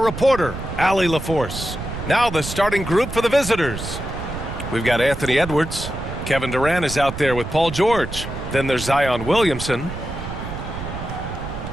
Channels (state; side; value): noise; right; rumble, 8 dB below the sound